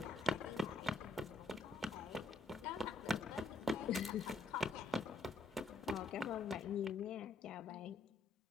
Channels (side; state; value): right; quieter; 3.5 dB